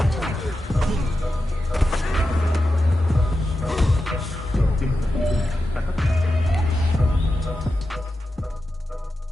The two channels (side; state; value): both; normal; correlation 0.90